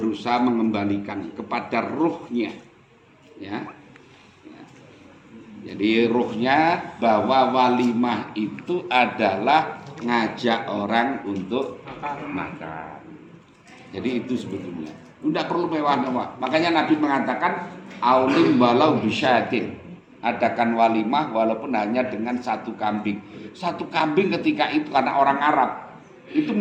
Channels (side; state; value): both; identical; correlation 1.00